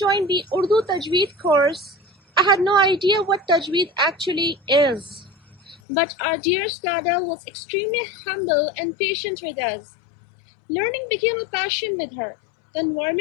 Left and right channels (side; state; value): right; drops out; at 5.8 s